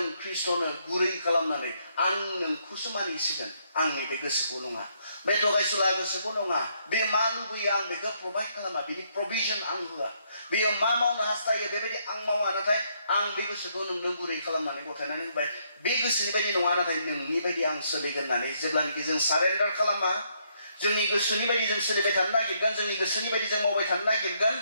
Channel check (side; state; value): both; inverted; correlation -0.72